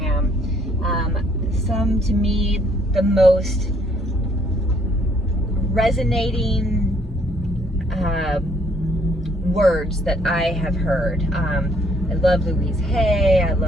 some to me the most resonating words that I have heard. I love Louise Hay, I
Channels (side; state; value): both; normal; correlation 0.65